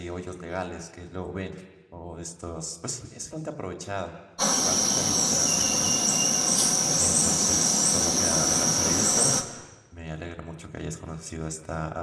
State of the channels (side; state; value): both; identical; correlation 1.00